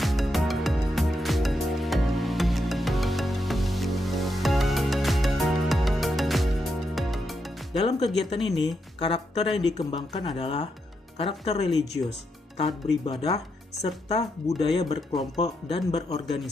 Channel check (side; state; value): both; normal; correlation 0.82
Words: Dalam kegiatan ini, karakter yang dikembangkan adalah karakter religius, taat beribadah, serta budaya berkelompok dan